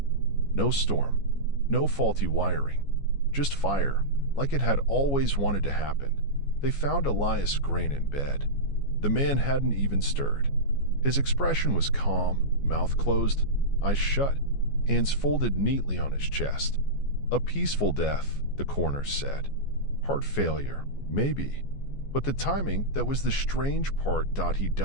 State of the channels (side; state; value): right; late; 14 ms